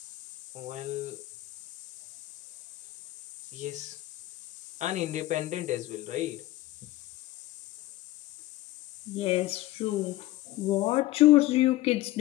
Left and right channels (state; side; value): quieter; right; 16.9 dB